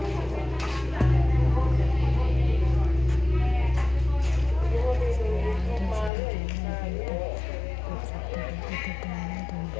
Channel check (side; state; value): right; drops out; at 6.1 s